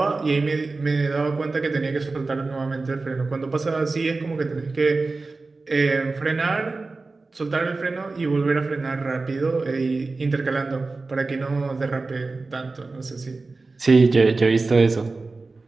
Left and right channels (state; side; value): quieter; left; 3.7 dB